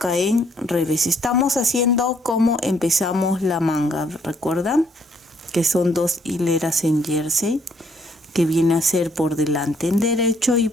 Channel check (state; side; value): normal; both; correlation 0.68